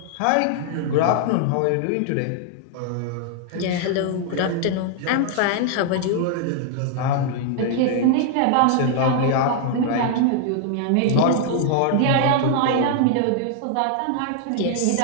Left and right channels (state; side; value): different; both; correlation 0.00